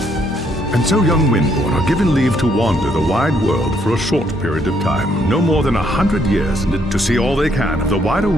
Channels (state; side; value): normal; both; correlation 0.71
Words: And so young Windborn are given leave to wander the wide world for a short period of time, no more than 100 years, to see all they can of the wider